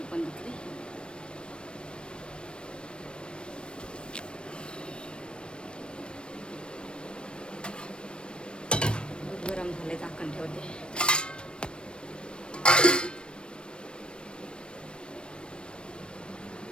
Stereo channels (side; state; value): right; late; 0.055 ms